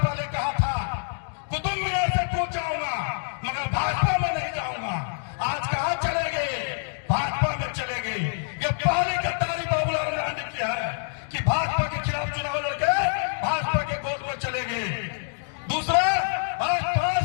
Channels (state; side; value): silent; right; digital silence